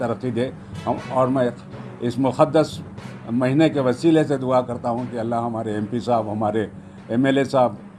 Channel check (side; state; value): both; identical; correlation 1.00